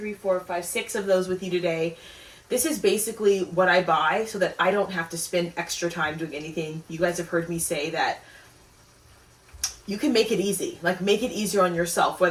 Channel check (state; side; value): identical; both; correlation 1.00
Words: 4, 5, 6 of those with you today. This is basically what I buy so that I don't have to spend extra time doing anything. You guys have heard me say that you can make it easy. Like, make it easier on yourself,